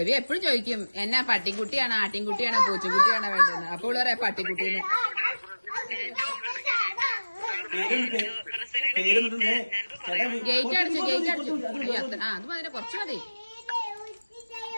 എപ്പോഴും ചോദിക്കും എന്നാ പട്ടിക്കുട്ടിയാണോ ആട്ടിൻകുട്ടിയാണോ പൂച്ചക്കുട്ടിയാണോ വേണ്ടത്. അപ്പോൾ പറയാ പട്ടിക്കുട്ടീന്ന്. ഗേറ്റ് അടിച്ചു. അത് മതി, കുറച്ച് മതി.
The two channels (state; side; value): inverted; both; correlation -1.00